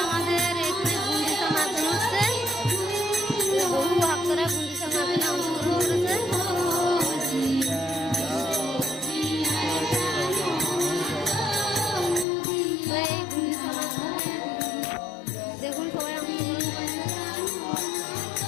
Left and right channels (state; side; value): drops out; right; at 12.2 s